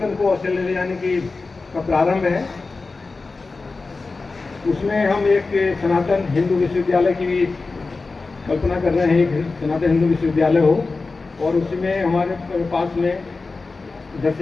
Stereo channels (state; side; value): quieter; right; 3.9 dB